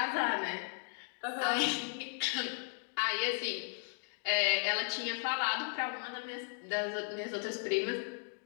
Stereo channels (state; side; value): silent; right; 54 dB below the other